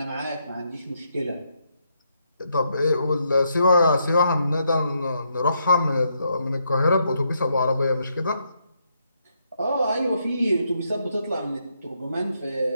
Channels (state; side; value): inverted; both; correlation -0.77